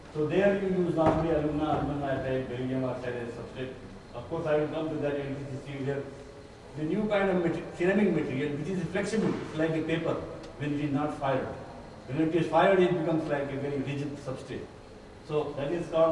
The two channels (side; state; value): both; identical; correlation 1.00